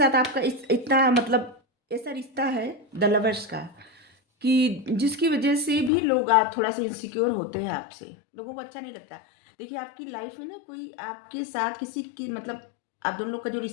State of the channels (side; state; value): right; drops out; at 5.9 s